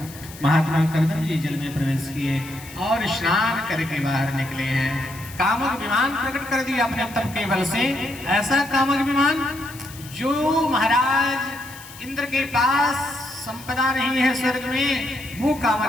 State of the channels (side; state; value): left; noise; hiss, 17 dB below the sound